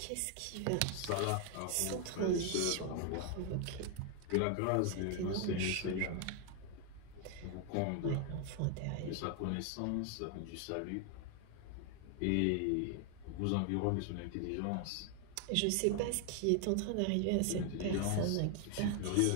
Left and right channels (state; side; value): different; both; correlation 0.00